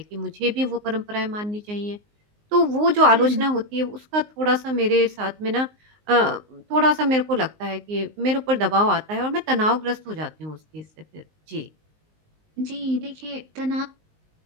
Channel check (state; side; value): late; left; 19 ms